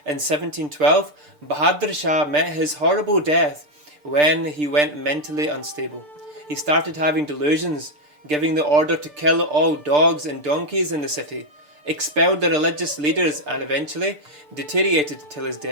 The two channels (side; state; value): left; late; 6.7 ms